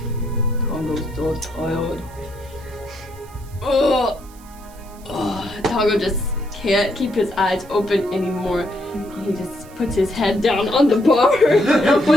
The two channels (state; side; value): noise; right; hiss, 24 dB below the sound